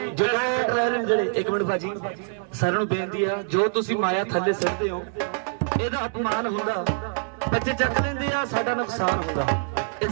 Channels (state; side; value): silent; left; 62 dB below the other